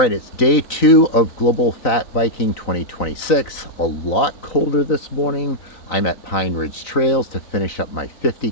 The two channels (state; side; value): late; right; 3.9 ms